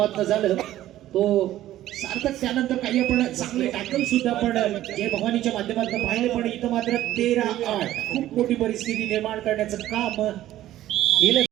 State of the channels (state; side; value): quieter; left; 13.8 dB